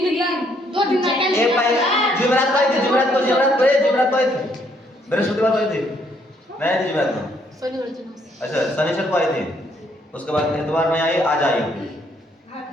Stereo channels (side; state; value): both; normal; correlation 0.69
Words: दिन 2 दिन एक जुमेरात को आई थी। जुमेरात को आई थी। बृहस्पतिवार को आई थी। नहीं जुमेरात को। अच्छा शनिवार को आई थी। उसके बाद इतवार में आई, आज आई।